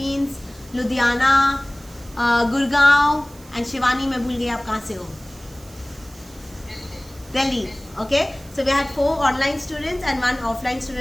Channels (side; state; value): right; noise; hiss, 23 dB below the sound